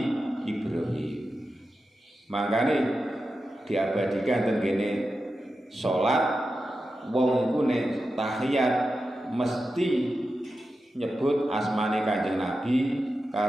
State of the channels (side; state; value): both; normal; correlation 0.91